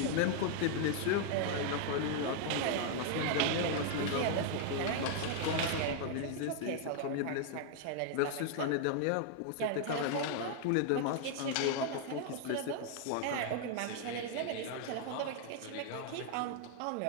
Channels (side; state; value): both; different; correlation 0.00